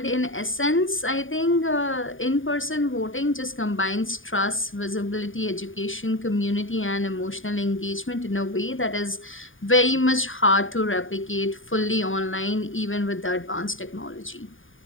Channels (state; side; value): late; right; 0.58 ms